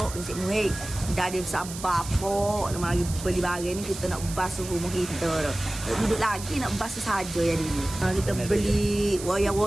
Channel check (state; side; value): noise; right; hiss, 11 dB below the sound